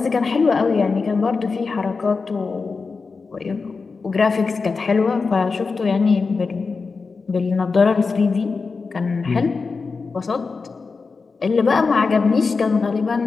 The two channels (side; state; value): right; quieter; 4.5 dB